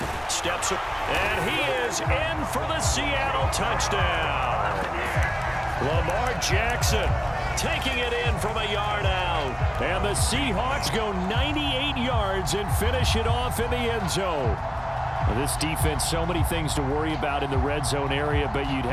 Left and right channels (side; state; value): both; identical; correlation 1.00